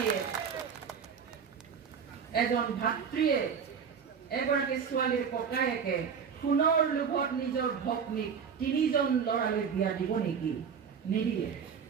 এজন ভাতৃয়ে এগৰাকী ছোৱালীৰ ককায়েকে পুনৰ লোভত নিজৰ ভগ্নীক 3জন ল'ৰালৈ বিয়া দিব নেকি নিদিয়ে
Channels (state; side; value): quieter; left; 6.7 dB